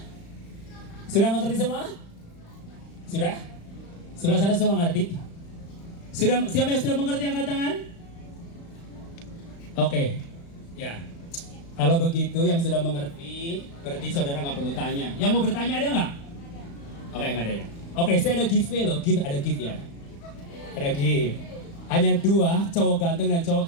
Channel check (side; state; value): right; late; 35 ms